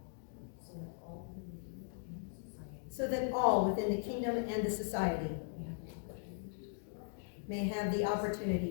so that all within the kingdom and the society may have the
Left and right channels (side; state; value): right; silent; digital silence